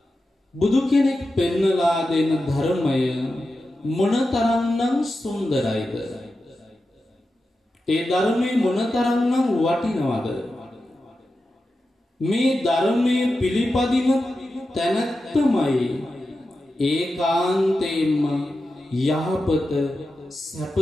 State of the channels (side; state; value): both; normal; correlation 0.91